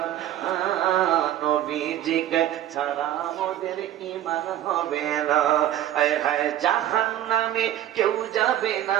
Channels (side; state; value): left; quieter; 12.3 dB